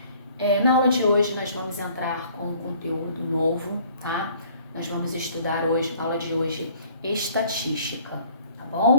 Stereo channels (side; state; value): both; inverted; correlation -0.57